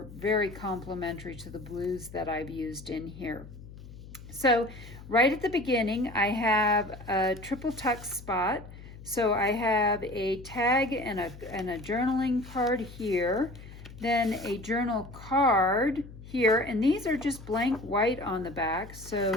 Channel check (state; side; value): noise; left; hum, 16 dB below the sound